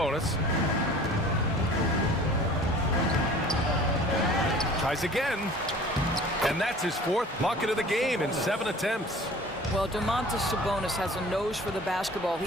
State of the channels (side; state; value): both; normal; correlation 0.46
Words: Tries again. And that's his 4th bucket of the game in 7 attempts. Well, Domantas Sabonis has a nose for the basketball. He